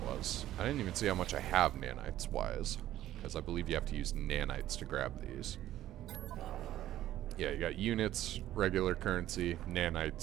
was. I didn't even see how much I have nanites-wise. Because I believe you have to use nanites to grab these. Yeah, you got units, regular currency,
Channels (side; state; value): left; quieter; 13.4 dB